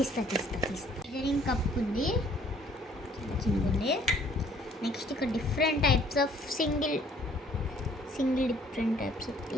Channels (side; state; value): both; normal; correlation 0.59